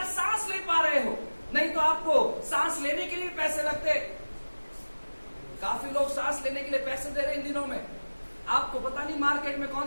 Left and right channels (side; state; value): both; inverted; correlation -1.00